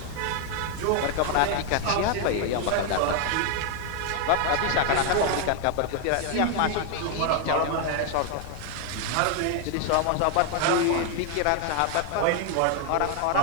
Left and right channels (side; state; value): both; different; correlation 0.01